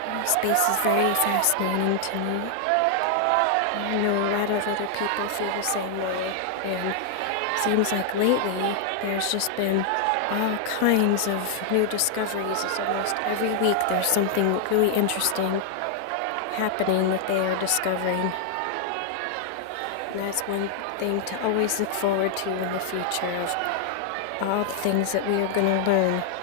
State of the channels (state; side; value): different; both; correlation 0.00